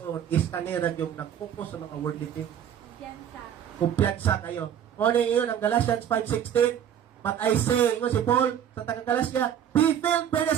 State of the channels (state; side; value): quieter; left; 9.5 dB